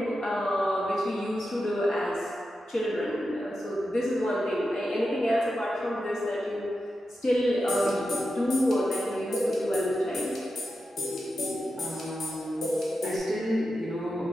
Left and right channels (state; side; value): normal; both; correlation 0.89